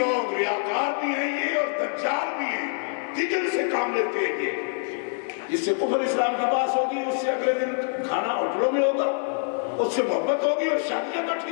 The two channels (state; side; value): silent; right; 59 dB below the other